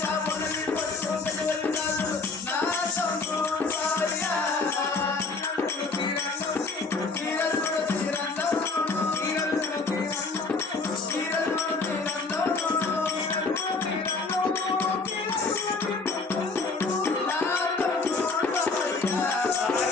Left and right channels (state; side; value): quieter; right; 4.1 dB